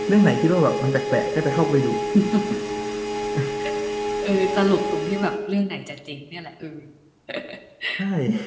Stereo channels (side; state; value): both; identical; correlation 1.00